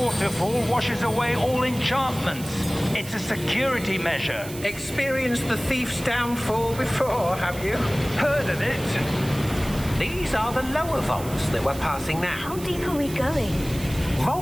washes away all enchantments. It's a security measure. Experienced the thief's downfall before, have you? Heard of it? These are the lower vaults that we're passing now. How deep are we going?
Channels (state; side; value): noise; right; hiss, 14 dB below the sound